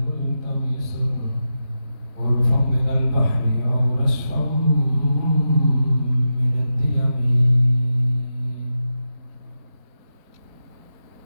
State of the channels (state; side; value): late; left; 4.4 ms